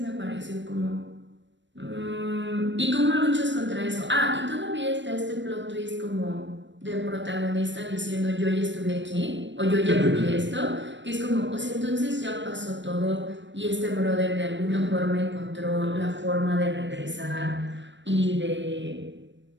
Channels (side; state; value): left; late; 0.53 ms